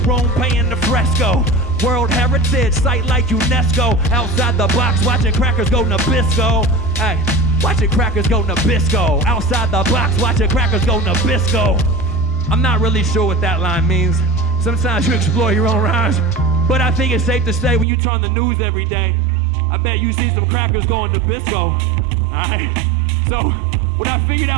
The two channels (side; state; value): left; drops out; at 17.9 s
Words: room, paying the Fresco. World Heritage Site like UNESCO. Outside the box, watching crackers go Nabisco. Hey, watching crackers go Nabisco. Outside the box, watching crackers go Nabisco. I'm not really sure what that line means. Sometimes you explore your own rhymes. But I think it's safe to say when you turn the news every day, I bet you see some crackers going Nabisco. Alright? So, what I figured